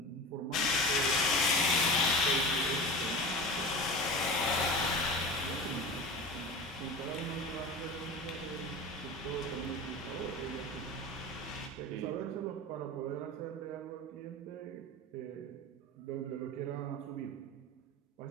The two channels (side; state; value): both; normal; correlation 0.31